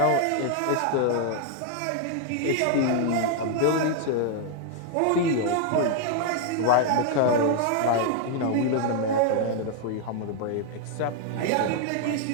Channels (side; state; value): both; different; correlation 0.00